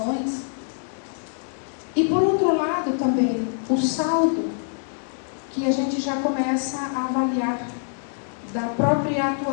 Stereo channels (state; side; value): silent; right; digital silence